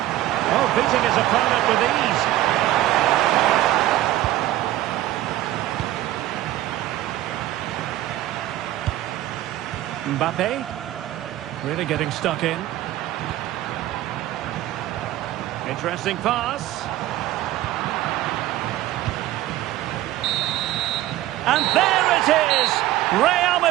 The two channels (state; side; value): quieter; left; 14.9 dB